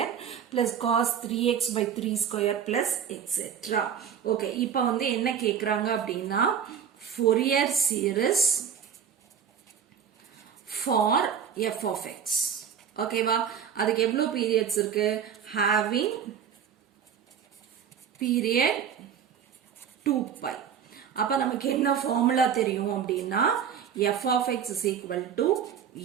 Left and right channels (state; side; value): quieter; left; 8.1 dB